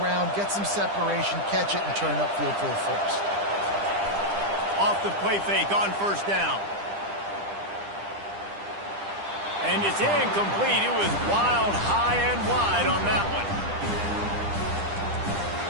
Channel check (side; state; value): left; late; 10 ms